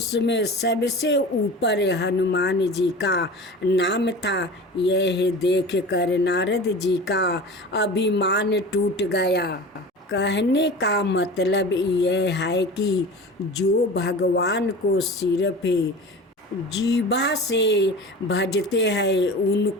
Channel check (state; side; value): normal; both; correlation 0.35